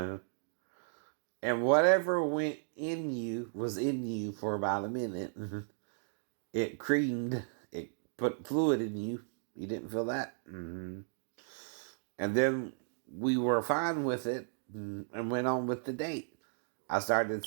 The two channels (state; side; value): silent; left; digital silence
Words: And whatever went in you was in you for about a minute. It creamed. It put fluid in you. You didn't feel that? Mm-hmm. And then we were fine with it and went on with the date. I started